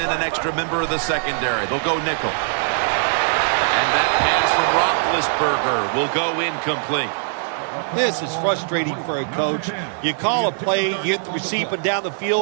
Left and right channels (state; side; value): silent; left; 65 dB below the other